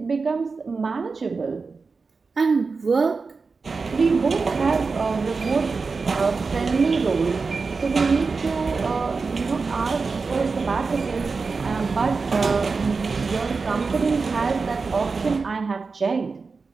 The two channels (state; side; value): quieter; left; 4.5 dB